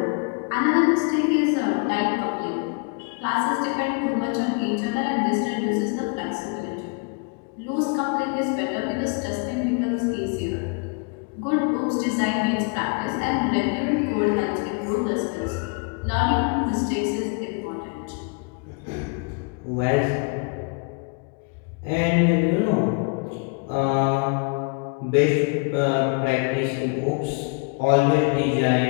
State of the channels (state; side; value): quieter; right; 34.9 dB